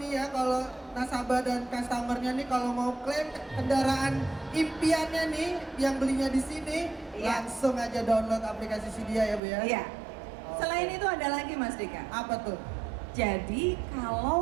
ya, kalau nasabah dan customernya nih kalau mau klaim kendaraan impiannya nih yang belinya di sini, Iya. langsung aja download aplikasi Sidia ya Bu ya. Iya. Oke. Selain itu ada lagi Mas Dika. Apa tuh? Jadi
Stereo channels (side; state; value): left; drops out; at 9.4 s